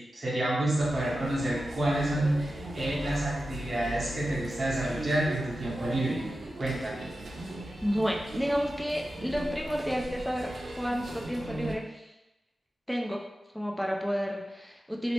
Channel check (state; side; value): normal; both; correlation 0.92